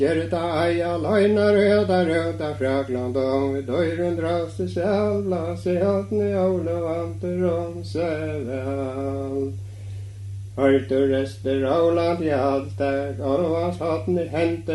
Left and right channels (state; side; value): identical; both; correlation 1.00